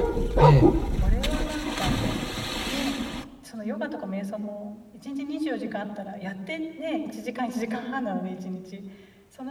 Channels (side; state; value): both; identical; correlation 1.00